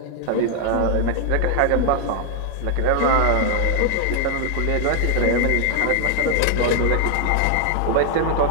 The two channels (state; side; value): different; both; correlation 0.00